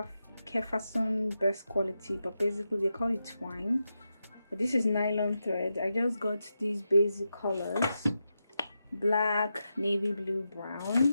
best quality, but basically they call it twine. But this is nylon thread. I just got these basic colors: black, navy blue,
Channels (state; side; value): inverted; both; correlation -0.88